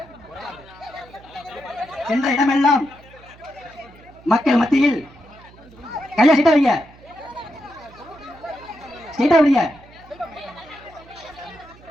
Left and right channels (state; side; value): noise; right; hum, 23 dB below the sound